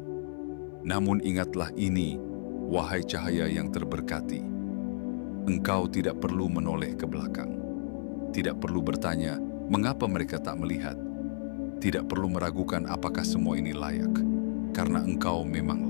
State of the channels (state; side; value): silent; right; 57 dB below the other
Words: Namun ingatlah ini, wahai cahaya yang terberkati. Engkau tidak perlu menoleh ke belakang. Tidak perlu bertanya, mengapa mereka tak melihat. Tidak perlu meragukan apakah semua ini layak. Karena engkau memang